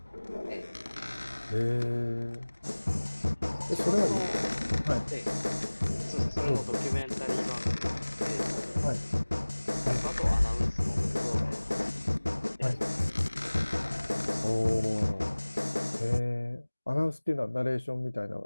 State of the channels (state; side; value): inverted; both; correlation -1.00